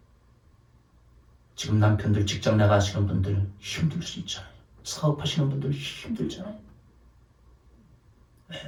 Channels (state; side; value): identical; both; correlation 1.00